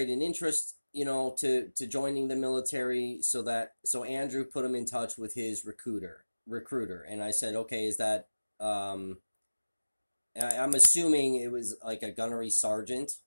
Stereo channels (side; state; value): both; inverted; correlation -1.00